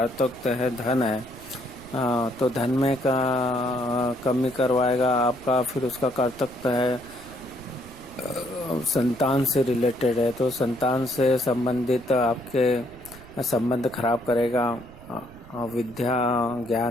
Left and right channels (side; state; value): right; noise; rumble, 20 dB below the sound